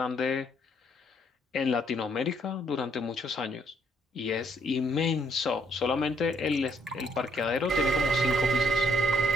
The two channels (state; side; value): normal; both; correlation 0.68